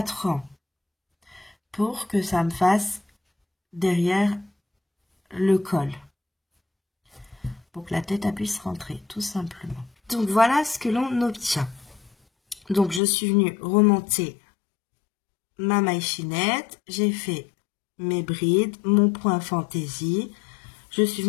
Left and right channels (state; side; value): drops out; right; at 13.0 s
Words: rangs pour que ça me fasse derrière le col. Pour que la tête puisse rentrer, tout simplement. Donc, voilà ce que l'on obtient. Donc, je suis venue remonter ma maille chaînette, j'ai fait mes brides, mon point fantaisie, je suis